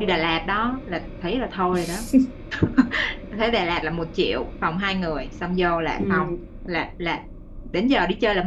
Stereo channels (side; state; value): both; identical; correlation 1.00